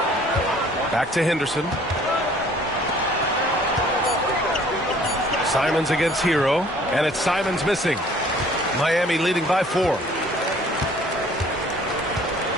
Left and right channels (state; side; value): normal; both; correlation 0.55